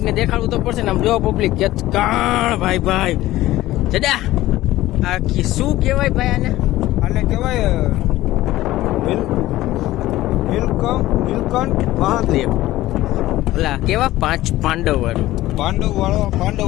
ને દેખાડવું તો પડશે ને. આમ જો પબ્લિક કાણ ભાઈ ભાઈ જડા આ શું કહેવાય ભાઈ આને? આને કહેવાય નીલકંઠ મહાદેવ. ઓલા કેવા પાંડવ વાળું પાંડવ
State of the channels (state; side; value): quieter; right; 16.1 dB